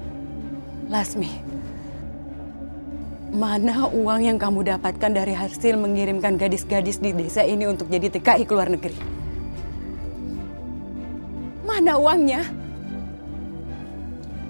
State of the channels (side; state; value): both; inverted; correlation -1.00